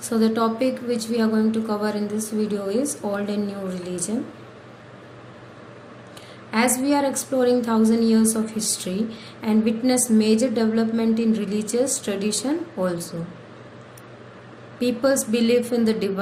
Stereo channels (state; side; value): identical; both; correlation 1.00